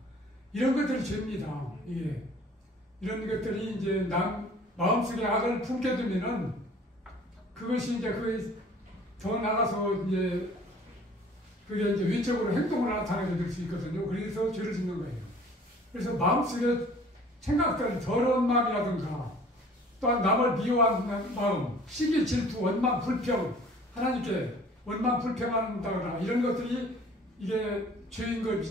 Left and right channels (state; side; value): normal; both; correlation 0.51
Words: 이런 것들이 죄입니다. 예. 이런 것들이 이제 마음속에 악을 품게 되면은 그것이 이제 더 나가서 이제 그게 이제 외적으로 행동을 나타내게 될 수 있거든요. 그래서 죄를 짓는 거예요. 그래서 마음속에 생각들, 더러운 마음이라든가 또한 남을 미워하는 마음, 시기 질투 원망 불평, 하나님께 원망 불평한다거나 이런 것들이 이게